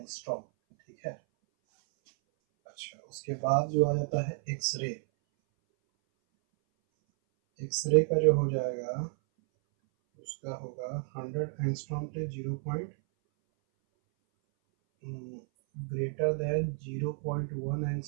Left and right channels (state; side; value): silent; left; 57 dB below the other